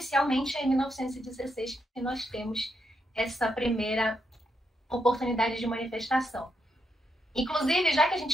é em 1916 que nós temos essa primeira oportunidade de manifestação. Inclusive, já que a gente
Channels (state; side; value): normal; both; correlation 0.81